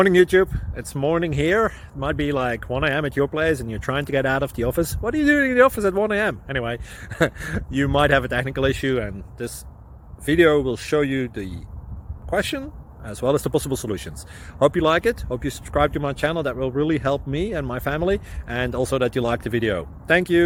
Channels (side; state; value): both; identical; correlation 1.00